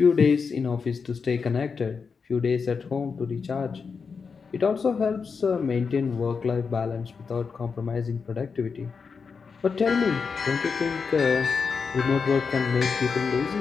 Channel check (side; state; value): right; quieter; 5.4 dB